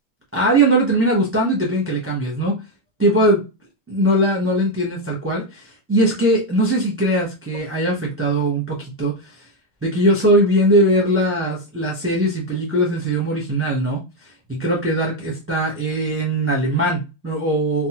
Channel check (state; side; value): normal; both; correlation 0.04